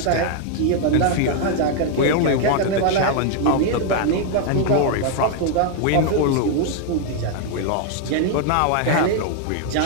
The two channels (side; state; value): both; different; correlation 0.00